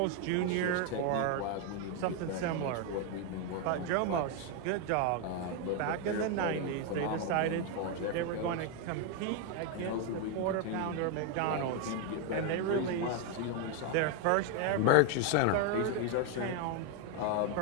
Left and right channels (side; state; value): both; different; correlation 0.01